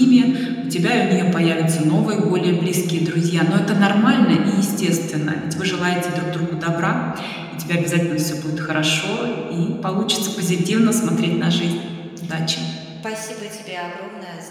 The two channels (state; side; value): identical; both; correlation 1.00